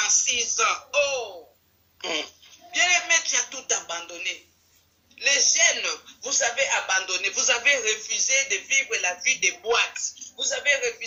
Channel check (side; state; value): both; identical; correlation 1.00